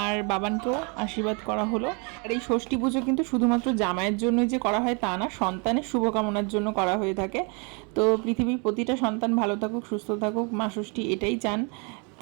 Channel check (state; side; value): quieter; left; 33.8 dB